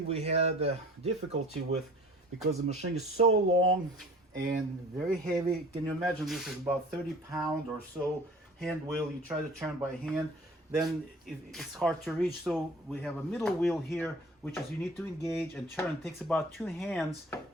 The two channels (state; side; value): normal; both; correlation 0.46